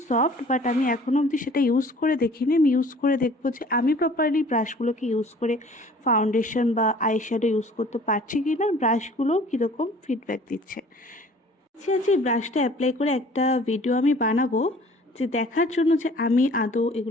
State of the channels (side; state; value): both; normal; correlation 0.50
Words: সফট। বাট আমি এখনও অবধি সেটা ইউজ করে দেখিনি। আমি ইউজ করে দেখবো যে আমি প্রপারলি ব্রাশগুলোকে ইউজ করে ফাউন্ডেশন বা আইশ্যাডো ইউজ করতে পারছি কি না, ব্রাশগুলো কীরকম ফিডব্যাক দিচ্ছে। এই ব্রাশটা অ্যাপ্লাই করে একটা ভিডিও আমি বানাবো, যে দেখার জন্য যে আমি আদৌ